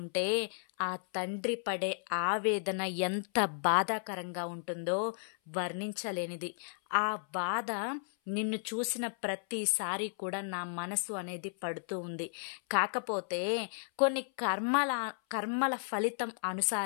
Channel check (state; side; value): silent; right; 55 dB below the other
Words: ఆ తండ్రి పడే ఆవేదన ఎంత బాధాకరంగా ఉంటుందో వర్ణించలేనిది. ఆ బాధ నిన్ను చూసిన ప్రతిసారి కూడా నా మనసు అనేది పడుతూ ఉంది. కాకపోతే కొన్ని కర్మల ఫలితం